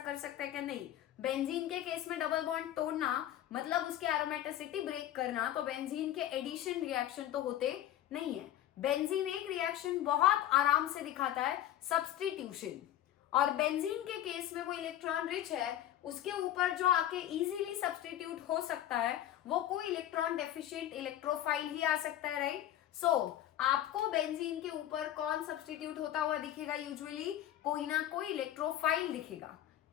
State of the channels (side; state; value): right; quieter; 12.3 dB